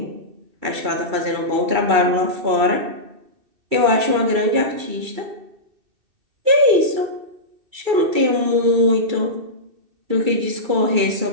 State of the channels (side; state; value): left; late; 2.3 ms